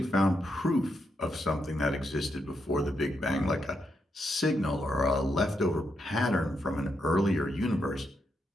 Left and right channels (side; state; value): both; normal; correlation 0.81